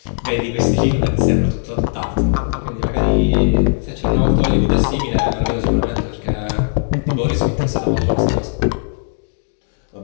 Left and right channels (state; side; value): silent; right; digital silence